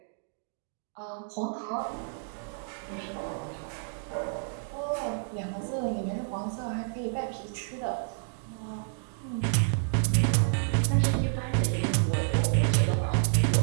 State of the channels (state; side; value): silent; left; digital silence